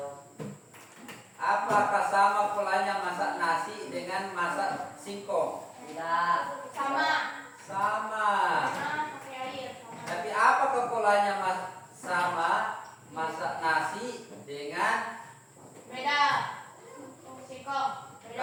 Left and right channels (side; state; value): both; identical; correlation 1.00